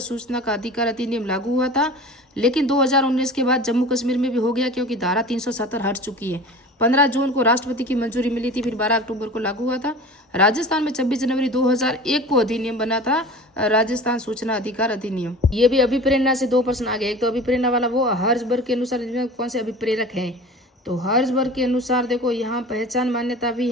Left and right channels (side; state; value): both; normal; correlation 0.38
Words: सूचना का अधिकार अधिनियम लागू हुआ था। लेकिन 2019 के बाद जम्मू कश्मीर में भी हो गया, क्योंकि धारा 370 हट चुकी है। 15 जून को राष्ट्रपति की मंजूरी मिली थी, फिर 12 अक्टूबर को लागू हुआ था। राजस्थान में 26 जनवरी 2001 को अधिनियम बना था, राजस्थान सूचना अधिकार अधिनियम। ये भी अभिप्रेरणा से 2 प्रश्न आ गए। एक तो अभिप्रेरणा वाला वो हर्जबर्ग के अनुसार कौन से अभिप्रेरक हैं, तो हर्जबर्ग के अनुसार देखो यहाँ पहचान मान्यता भी